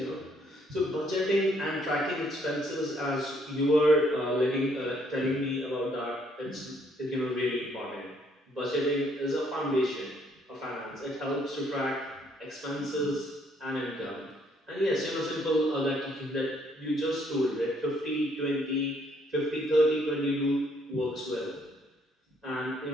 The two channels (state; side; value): normal; both; correlation 0.67